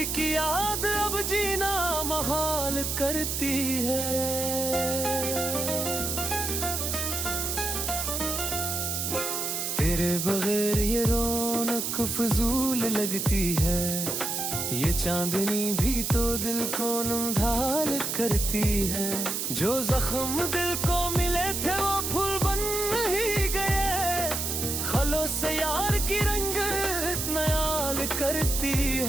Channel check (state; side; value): noise; right; hiss, 1 dB below the sound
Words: की याद अब जीना महाल करती है। तेरे बगैर ये रौनक फजूल लगती है, ये चांदनी भी तो दिल को नमढाल करती है। जो जख्म दिल को मिले थे वो फूल बन ही गए, खलों से यार की रंगत नयाल करती